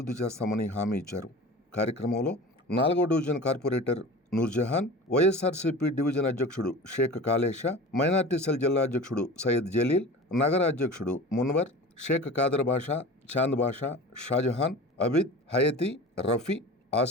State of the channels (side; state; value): both; normal; correlation 0.35